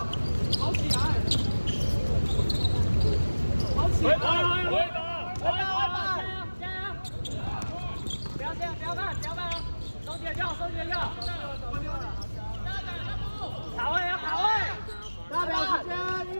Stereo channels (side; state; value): both; inverted; correlation -1.00